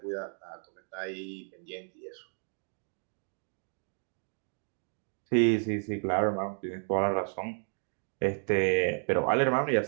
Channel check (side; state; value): left; silent; 56 dB below the other